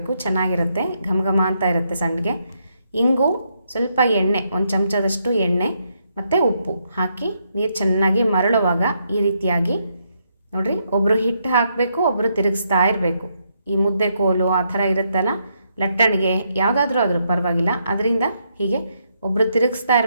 ಚೆನ್ನಾಗಿರುತ್ತೆ, ಘಮ ಅಂತ ಇರುತ್ತೆ ಸಂಡಿಗೆ. ಇಂಗು, ಸ್ವಲ್ಪ ಎಣ್ಣೆ, 1 ಚಮಚದಷ್ಟು ಎಣ್ಣೆ ಮತ್ತು ಉಪ್ಪು ಹಾಕಿ ನೀರು ಚೆನ್ನಾಗಿ ಮರಳುವಾಗ ಈ ರೀತಿಯಾಗಿ ನೋಡಿರಿ, ಒಬ್ಬರು ಹಿಟ್ಟು ಹಾಕಬೇಕು, ಒಬ್ಬರು ತಿರುಗಿಸ್ತಾ ಇರಬೇಕು. ಈ ಮುದ್ದೆ ಕೋಲು ಆ ಥರ ಇರುತ್ತಲ್ಲ, ಲಟ್ಟಣಿಗೆ ಯಾವುದಾದ್ರೂ ಆದರೂ ಪರವಾಗಿಲ್ಲ. ಅದರಿಂದ ಹೀಗೆ ಒಬ್ಬರು ತಿರುಗಿಸ್ತಾ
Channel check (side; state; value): both; inverted; correlation -0.77